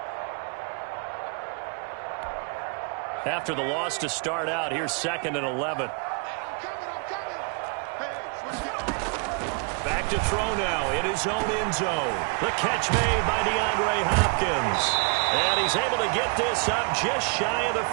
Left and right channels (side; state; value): left; quieter; 37.9 dB